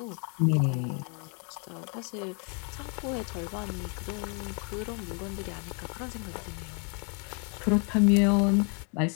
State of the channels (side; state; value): right; quieter; 38.3 dB